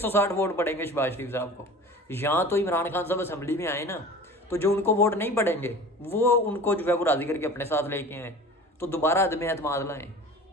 वोट पड़ेंगे शहबाज शरीफ साहब को। यहाँ तो इमरान खान साहब असम्बली में आए ना, तो जो उनको वोट नहीं पड़ेंगे वो उनको जो है वो राजी करके अपने साथ लेके आए, तो दोबारा अदम एतमाद लाएं,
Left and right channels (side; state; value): both; normal; correlation 0.39